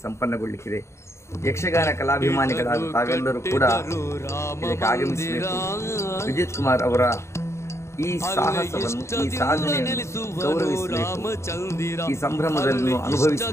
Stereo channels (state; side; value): late; right; 0.13 ms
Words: ಸಂಪನ್ನಗೊಳ್ಳಲಿಕ್ಕಿದೆ. ಯಕ್ಷಗಾನ ಕಲಾಭಿಮಾನಿಗಳಾದ ತಾವೆಲ್ಲರೂ ಕೂಡ ಇದಕ್ಕೆ ಆಗಮಿಸಬೇಕು. ವಿಜಿತ್ ಕುಮಾರ್ ಅವರ ಈ ಸಾಹಸವನ್ನು, ಈ ಸಾಧನೆಯನ್ನು ಗೌರವಿಸಬೇಕು, ಈ ಸಂಭ್ರಮದಲ್ಲಿ